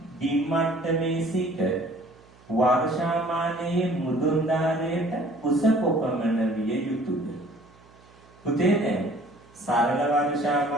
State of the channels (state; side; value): noise; right; hum, 27 dB below the sound